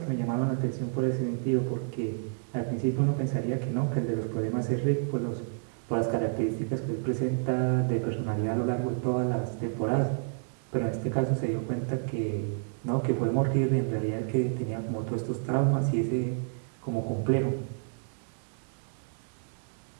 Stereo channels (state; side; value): silent; left; digital silence